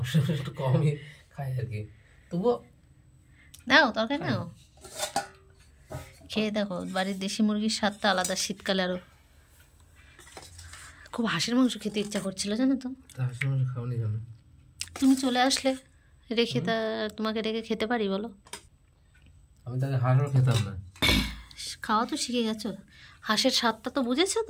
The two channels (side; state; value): both; identical; correlation 1.00